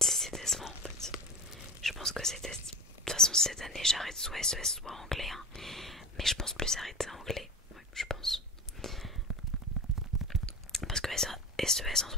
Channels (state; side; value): normal; both; correlation 0.30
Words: décevant en fait. Je pense que c'était... De toute façon cette année j'arrête soit SES soit anglais, hein. Mais je pense plus arrêter anglais, ouais, je pense. Parce que SES en